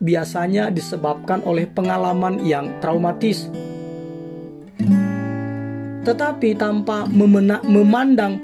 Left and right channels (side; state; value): both; identical; correlation 1.00